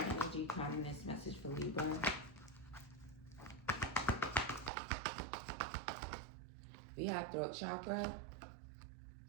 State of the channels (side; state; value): left; drops out; at 4.7 s